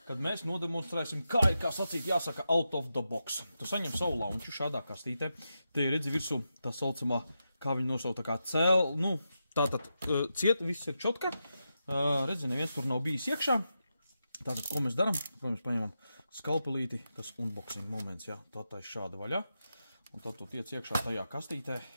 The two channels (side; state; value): both; inverted; correlation -0.88